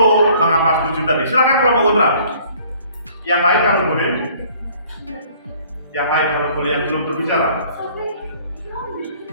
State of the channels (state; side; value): inverted; both; correlation -0.56